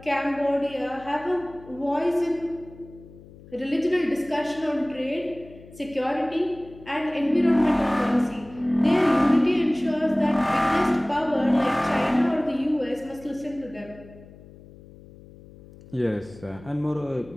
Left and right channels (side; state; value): left; noise; hum, 21 dB below the sound